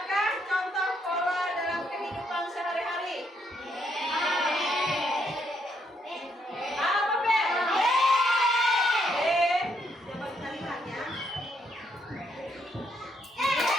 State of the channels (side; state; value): both; normal; correlation 0.74